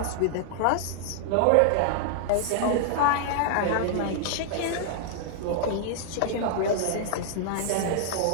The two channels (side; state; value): both; different; correlation -0.01